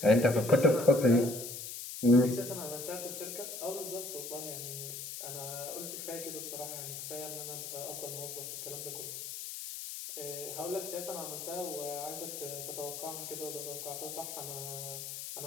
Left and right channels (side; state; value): left; noise; hiss, 8 dB below the sound